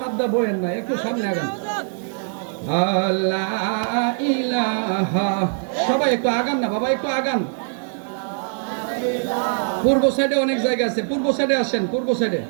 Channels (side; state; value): left; silent; 64 dB below the other